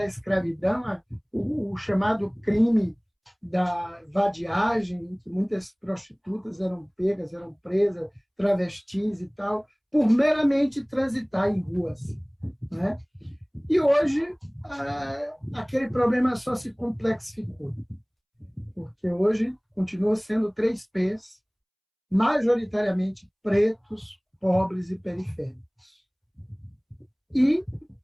escravidão, o chamado crime da vadiagem, em que muitas prostitutas eram pegas, eram presas, travestis e tal, por meramente transitar em ruas, né? E hoje, aquele problema só se complexificou, porque hoje continua sendo 3 P's, majoritariamente pretos, pobres e periféricos. E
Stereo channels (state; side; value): identical; both; correlation 1.00